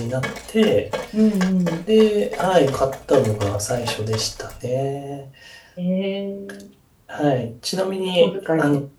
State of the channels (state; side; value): identical; both; correlation 1.00